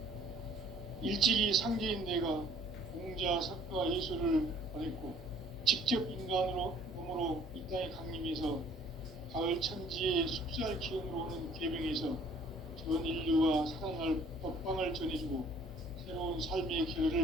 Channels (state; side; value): normal; both; correlation 0.57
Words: 일찍이 상제인 내가 공자, 석가, 예수를 보냈고 직접 인간으로 몸으로 이 땅에 강림해서 가을 천지의 숲살 기운으로 오는 계명에서 전 인류와 살아날 법방을 전해주고 새로운 삶의